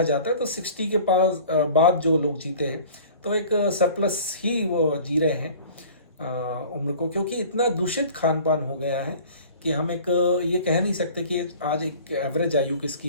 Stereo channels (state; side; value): inverted; both; correlation -0.45